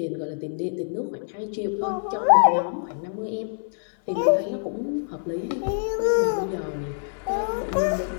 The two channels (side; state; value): right; silent; 59 dB below the other